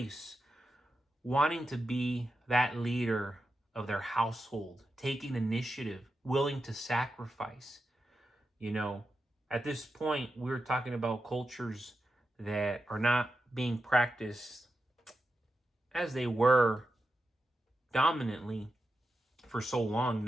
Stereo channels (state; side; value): normal; both; correlation 0.89